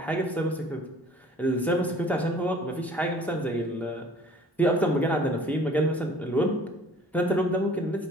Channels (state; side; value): normal; both; correlation 0.51